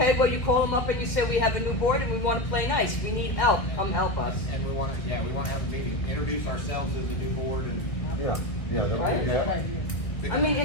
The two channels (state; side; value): late; right; 1.4 ms